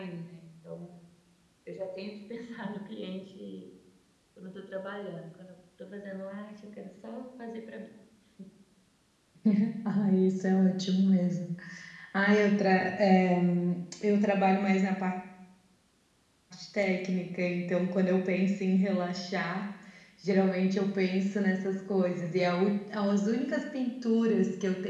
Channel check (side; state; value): both; identical; correlation 1.00